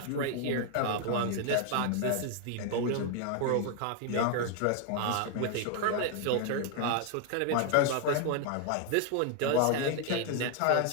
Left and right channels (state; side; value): different; both; correlation 0.00